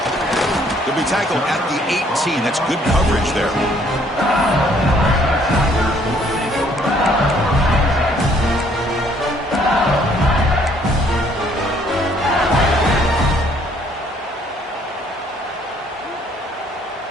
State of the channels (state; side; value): normal; both; correlation 0.63